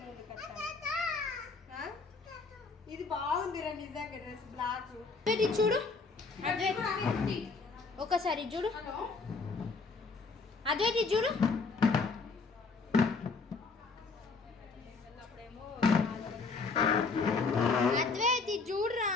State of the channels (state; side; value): quieter; right; 4.3 dB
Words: ఇది బాగుంది రా నిజంగా డ్రెస్ బ్లాక్. ఇది చూడు ఒకసారి చూడు అద్వైతి చూడు. అద్వైతి చూడరా.